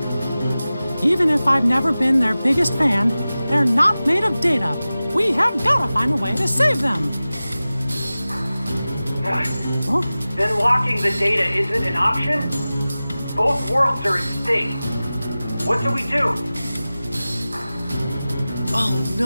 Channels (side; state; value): both; inverted; correlation -0.96